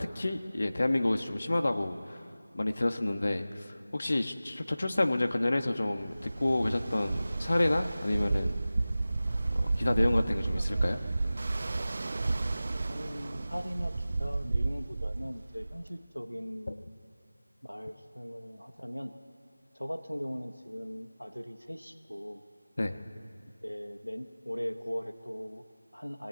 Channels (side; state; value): both; inverted; correlation -0.97